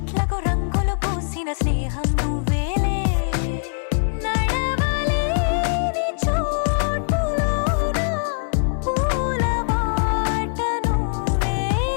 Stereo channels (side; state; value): right; silent; digital silence